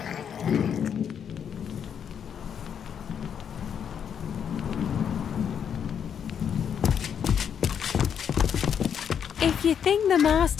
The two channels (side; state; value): right; quieter; 8.0 dB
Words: If you think the